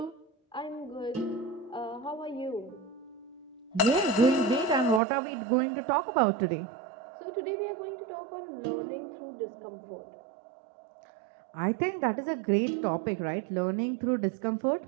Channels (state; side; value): drops out; left; at 5.0 s